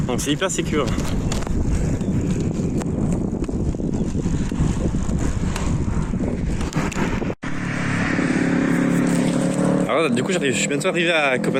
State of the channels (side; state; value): both; identical; correlation 1.00